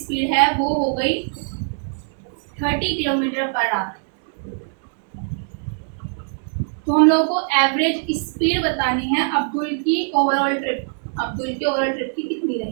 है वो हो गई 30 किलोमीटर पर आवर। तो हम लोगों को एवरेज स्पीड बतानी है अब्दुल की ओवरऑल ट्रिप, अब्दुल की ओवरऑल ट्रिप की कितनी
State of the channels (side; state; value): left; silent; 64 dB below the other